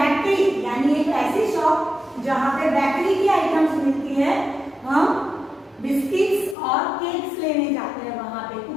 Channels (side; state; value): right; drops out; at 6.6 s